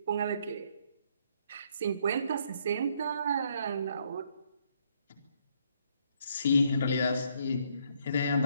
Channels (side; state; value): both; inverted; correlation -0.70